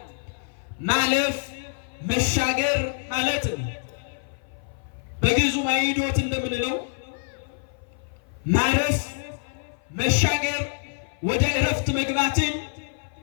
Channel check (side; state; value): right; silent; 55 dB below the other